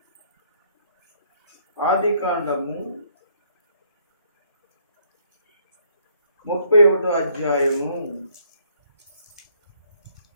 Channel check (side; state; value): both; inverted; correlation -0.66